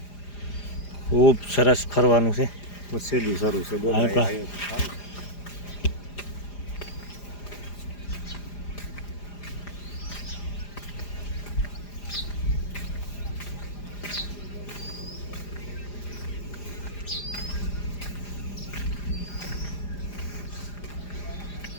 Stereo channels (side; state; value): right; late; 4.9 ms